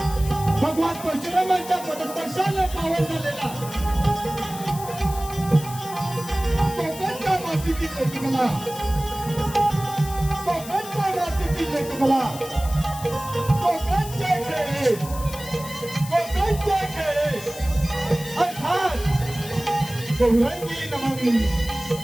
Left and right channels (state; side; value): noise; left; hiss, 13 dB below the sound